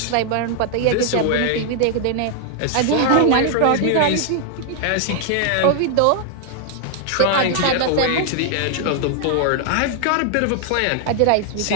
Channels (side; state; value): both; different; correlation 0.00